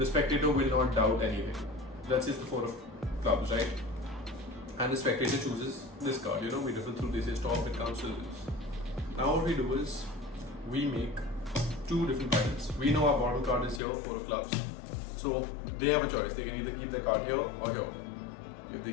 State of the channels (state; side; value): drops out; right; at 13.8 s